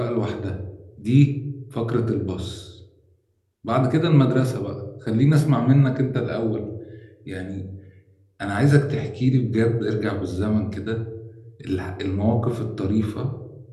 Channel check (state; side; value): identical; both; correlation 1.00